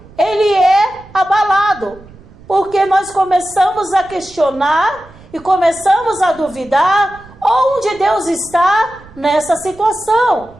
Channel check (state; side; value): noise; right; rumble, 23 dB below the sound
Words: ele é abalado. Porque nós começamos a questionar e começamos a duvidar onde Deus está nessa situação.